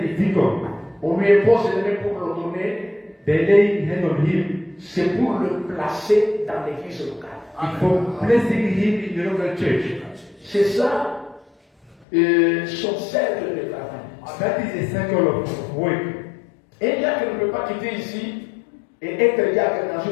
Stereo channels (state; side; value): drops out; right; at 12.1 s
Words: deacon, on lui impose les mains pour l'ordonner, they lay hand on him. c'est pour le placer dans l'église locale. It's for placing him in the local church. C'est ça son cercle de travail. That is a circle of work. Un diacre ne peut pas quitter ici et être diacre dans